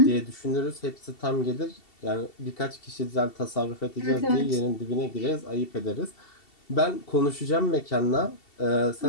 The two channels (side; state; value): right; late; 2.7 ms